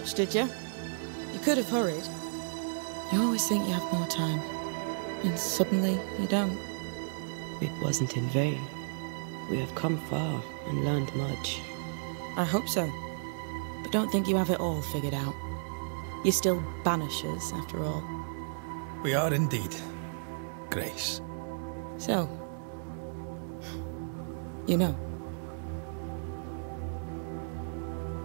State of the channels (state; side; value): silent; left; 56 dB below the other